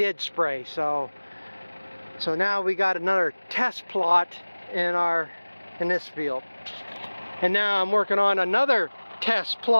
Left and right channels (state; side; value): inverted; both; correlation -1.00